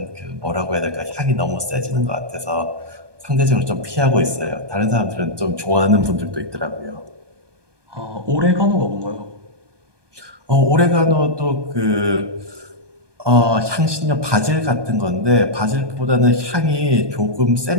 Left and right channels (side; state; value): left; late; 1.2 ms